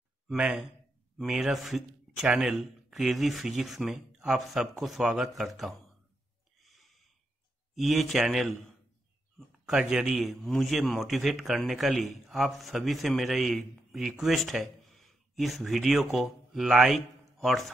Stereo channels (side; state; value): both; normal; correlation 0.83